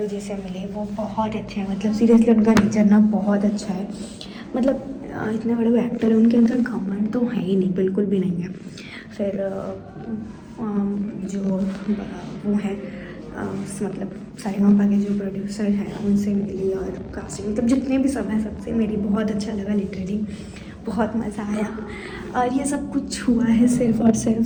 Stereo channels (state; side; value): identical; both; correlation 1.00